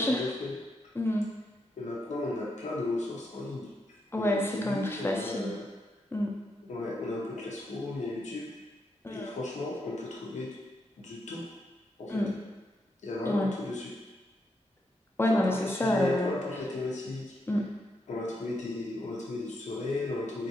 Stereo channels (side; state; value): both; normal; correlation 0.81